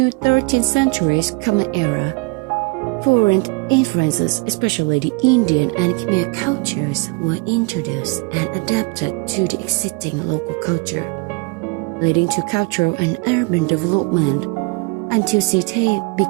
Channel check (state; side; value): quieter; left; 28.7 dB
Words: 13th centuries Common Era, foreign influences, especially the Indian and Khmer cultures, were introduced and adapted to the existing local culture, leading to cultural and urban development until Sithep